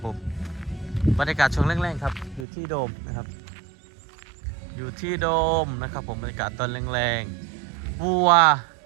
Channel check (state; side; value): drops out; left; at 2.5 s